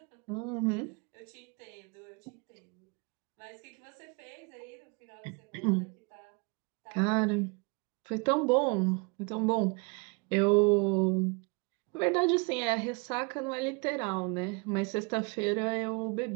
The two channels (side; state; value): left; quieter; 31.3 dB